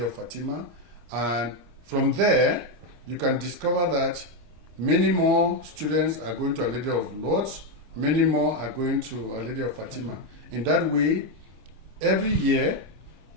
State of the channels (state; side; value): late; left; 25 ms